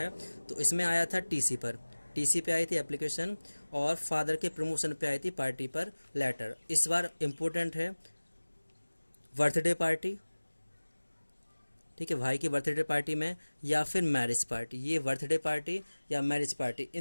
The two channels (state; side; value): inverted; both; correlation -1.00